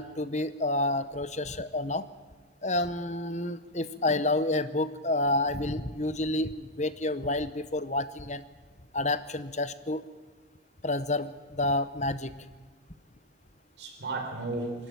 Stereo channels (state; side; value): normal; both; correlation -0.02